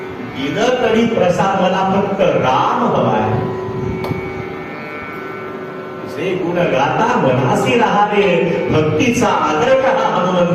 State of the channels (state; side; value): identical; both; correlation 1.00